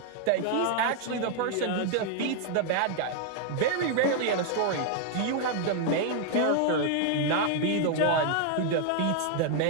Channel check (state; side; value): different; both; correlation 0.00